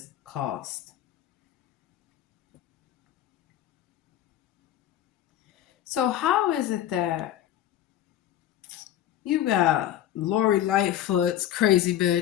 cost. So how is it that you got Lori Lightfoot's crazy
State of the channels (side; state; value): right; quieter; 11.9 dB